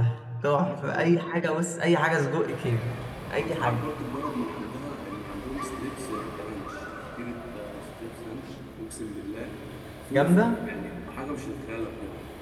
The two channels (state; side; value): identical; both; correlation 1.00